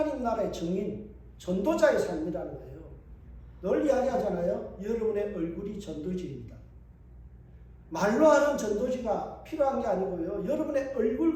나라의 증인, 전도자의 삶이라는 거예요. 늘 이야기하잖아요. 여러분의 얼굴이 전도지입니다. 말로 하는 전도지가 필요한 게 아니고요. 여러분의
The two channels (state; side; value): identical; both; correlation 1.00